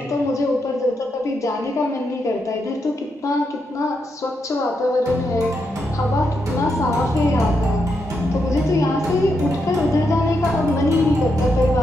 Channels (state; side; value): normal; both; correlation 0.82